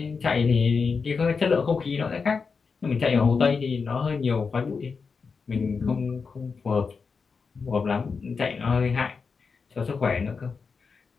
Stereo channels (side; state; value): right; quieter; 5.1 dB